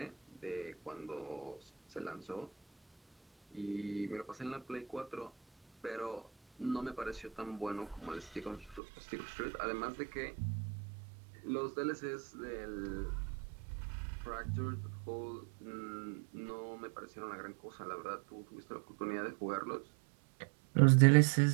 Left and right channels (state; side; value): drops out; left; at 8.8 s